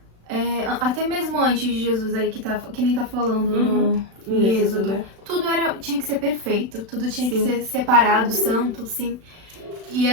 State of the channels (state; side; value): late; left; 36 ms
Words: até mesmo antes de Jesus aí, que nem tá falando no Êxodo, né? Tudo tinha que ser perfeito, tudo tinha que ser separado, santo, sim. E